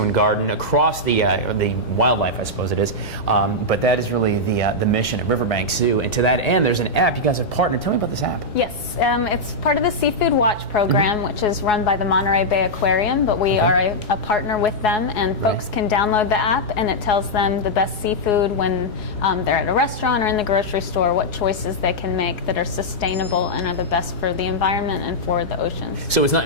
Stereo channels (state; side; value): late; right; 3.5 ms